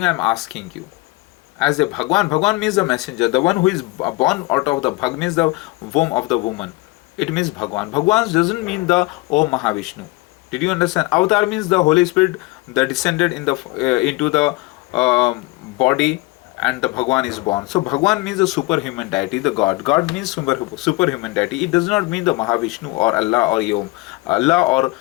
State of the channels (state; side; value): quieter; right; 22.3 dB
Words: I am asking you, as a Bhagwan means the messenger, the one who is born out of the Bhag means the womb of the woman. It means Bhagwan. Bhagwan doesn't mean the Om Mahavishnu. Did you understand? Avatar means the Holy Spirit that descended in the into the body, and the Bhagwan is born. So Bhagwan means the superhuman deity, the God. God means superhuman deity. It does not mean the Mahavishnu or Allah or Om, Allah or